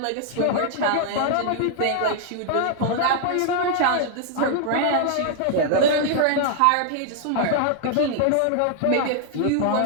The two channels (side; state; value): both; different; correlation -0.01